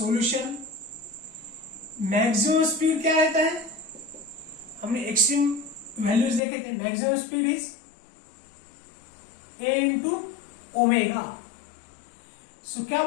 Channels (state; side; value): drops out; right; at 6.4 s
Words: मैक्सिमम स्पीड क्या रहता है, हमने एक्सट्रीम वैल्यूज देखे थे। Maximum speed is A into omega. So क्या